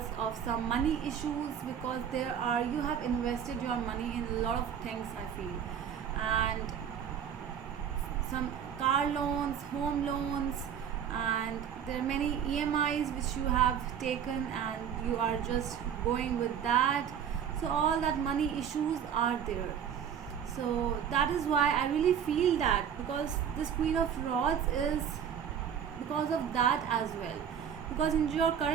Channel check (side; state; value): left; quieter; 8.4 dB